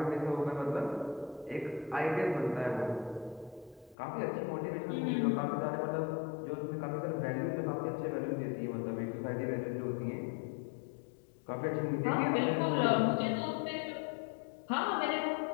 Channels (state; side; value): drops out; right; at 4.0 s